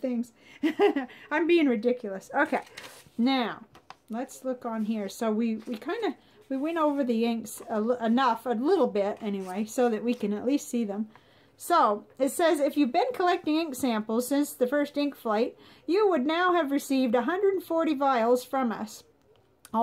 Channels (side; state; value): both; identical; correlation 1.00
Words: I'm being ridiculous. Okay, now let's look on here. So we went over the inks a little bit anyway, so that we can at least see them. So it says, if you've been collecting ink samples since the first ink flight, you would now have received 140 vials from us.